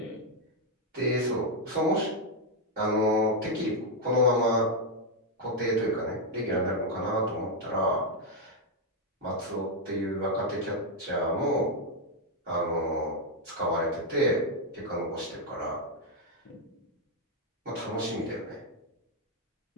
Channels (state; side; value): normal; both; correlation 0.00